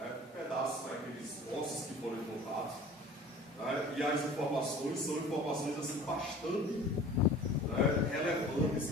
pedaços daqueles ossos que foram encontrados, né, e as informações são informações assim, bastante, né, relevantes,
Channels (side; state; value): both; normal; correlation 0.44